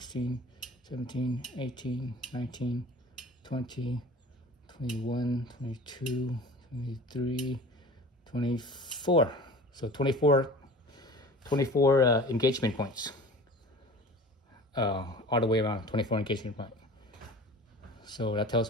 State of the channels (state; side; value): normal; both; correlation 0.41